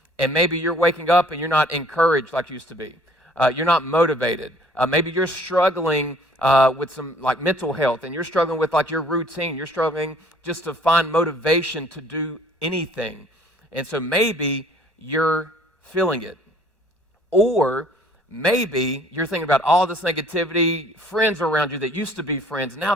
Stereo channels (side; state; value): left; late; 1.4 ms